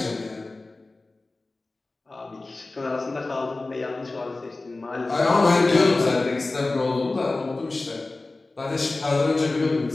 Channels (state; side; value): quieter; right; 3.2 dB